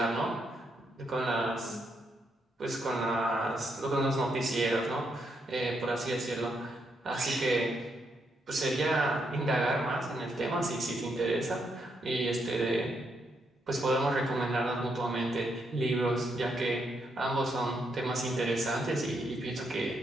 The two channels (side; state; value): both; normal; correlation 0.78